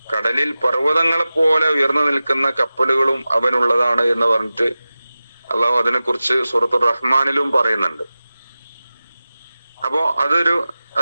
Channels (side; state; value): both; inverted; correlation -0.95